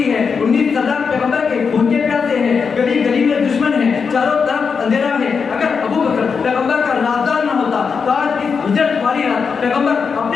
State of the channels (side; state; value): right; quieter; 5.7 dB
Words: ہے، 19 سردار پیغمبر کے خون کے پیاسے ہیں، گلی گلی میں دشمن ہے، چاروں طرف اندھیرا ہے۔ اگر ابو بکر پیغمبر کا رازدار نہ ہوتا تو آج اس ہجرت والی رات پیغمبر